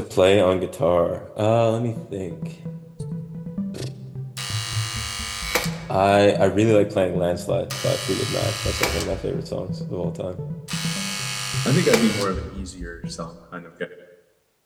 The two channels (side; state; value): both; identical; correlation 1.00